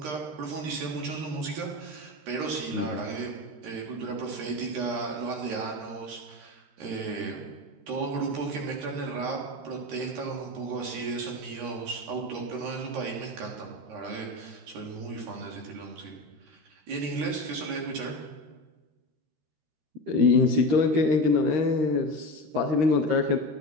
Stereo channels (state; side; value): late; left; 13 ms